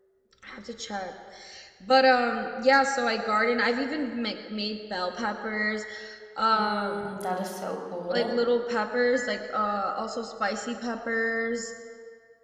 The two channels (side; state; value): both; identical; correlation 1.00